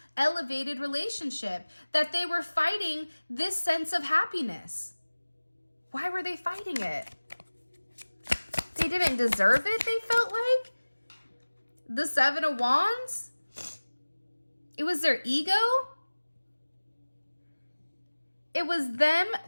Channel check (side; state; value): both; inverted; correlation -1.00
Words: elevated relationship, that they were fighting this sense of happiness. Why were they fighting it? They didn't deserve it, they felt like. The Seven of Wands. It was their ego. It was them,